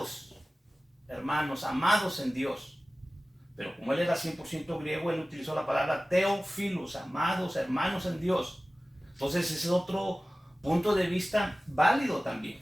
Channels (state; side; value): normal; both; correlation 0.97